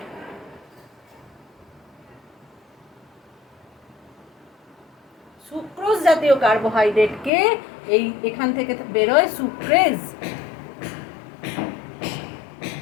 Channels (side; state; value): right; drops out; at 7.3 s